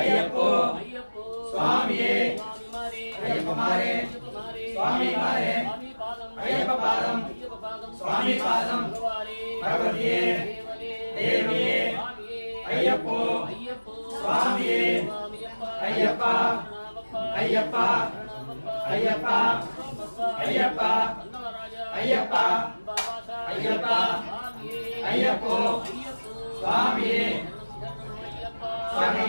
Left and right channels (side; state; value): both; inverted; correlation -1.00